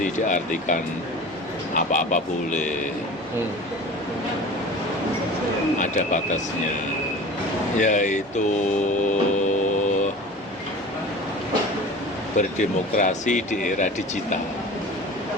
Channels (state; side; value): normal; both; correlation 0.38